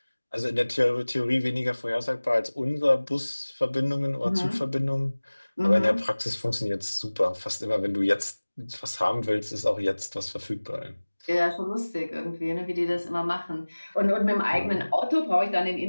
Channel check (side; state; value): both; inverted; correlation -1.00